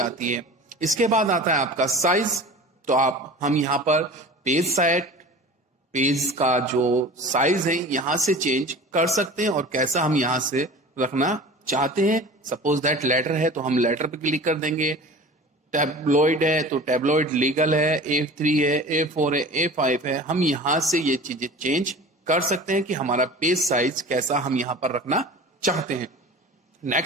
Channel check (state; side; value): normal; both; correlation 0.38